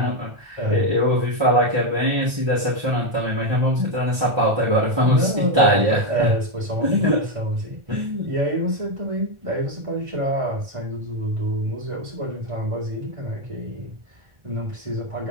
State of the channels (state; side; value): late; left; 1.4 ms